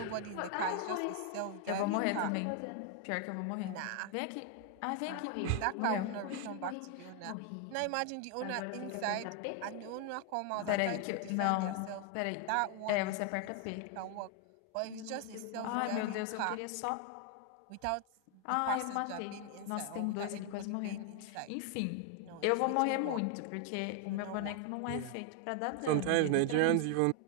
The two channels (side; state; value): both; different; correlation 0.00